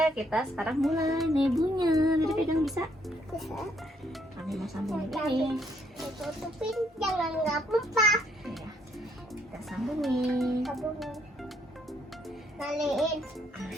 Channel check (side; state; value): both; normal; correlation 0.70